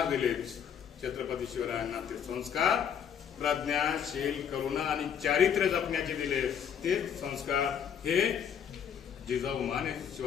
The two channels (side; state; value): right; quieter; 8.1 dB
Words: दिले छत्रपती शिवरायांना, ते संस्कार प्रज्ञा, शील, करुणा आणि चारित्र्य जपण्याचे दिले. ते संस्कार हे जिजाऊ माने